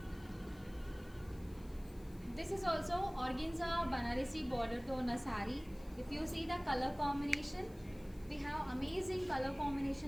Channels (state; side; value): noise; left; hiss, 25 dB below the sound